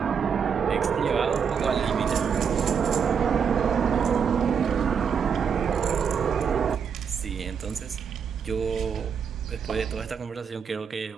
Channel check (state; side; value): quieter; left; 6.8 dB